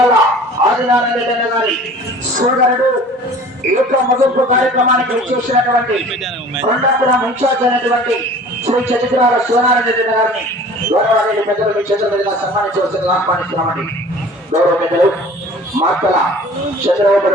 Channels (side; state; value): both; normal; correlation 0.45